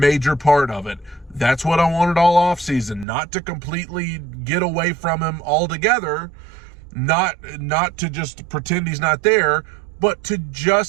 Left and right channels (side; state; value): left; drops out; at 3.1 s